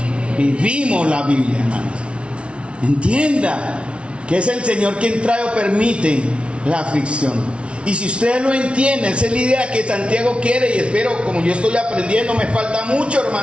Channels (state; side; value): late; left; 0.059 ms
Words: Vivimos la Biblia, hermanos. Entienda que es el Señor quien trae o permite la aflicción. Y si ustedes lo entienden, esa es la idea que Santiago quiere, y espero, como yo estoy aprendiendo, me falta mucho,